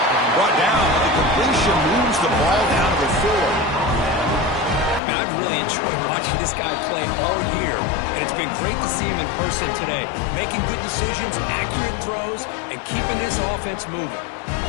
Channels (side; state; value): right; drops out; at 5.0 s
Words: Brought down, and the completion moves the ball down to the 4. I've really enjoyed watching this guy play all year, and it's been great to see him in person today, making good decisions, accurate throws, and keeping his offense moving.